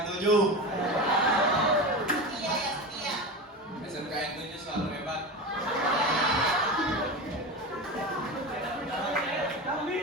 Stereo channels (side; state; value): both; normal; correlation 0.25